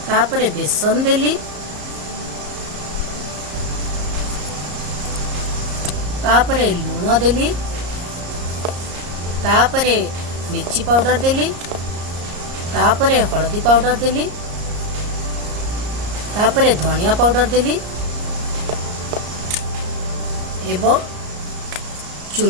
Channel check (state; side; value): late; left; 34 ms